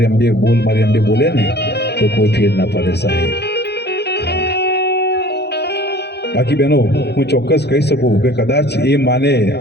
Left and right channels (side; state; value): right; late; 0.48 ms